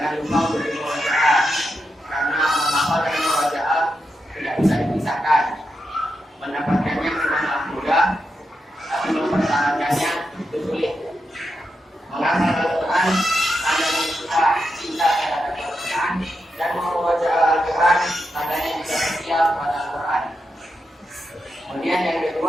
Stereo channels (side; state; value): both; normal; correlation 0.86